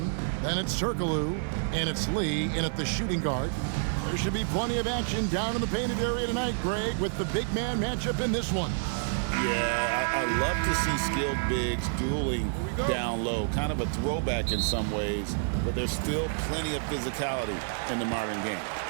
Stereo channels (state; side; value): silent; left; digital silence